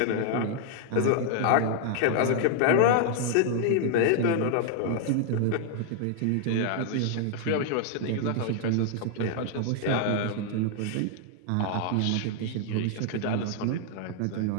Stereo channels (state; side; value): different; both; correlation 0.00